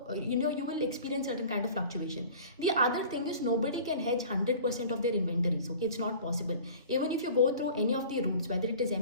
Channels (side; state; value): both; inverted; correlation -0.44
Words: you will experience certain kind of fluctuation. The other thing is, nobody can hedge 100% of their inventories. Okay, it's not possible. Even if you go through any of the routes, whether it is